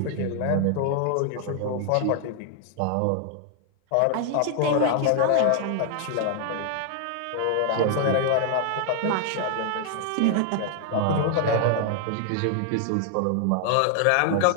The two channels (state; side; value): different; both; correlation 0.00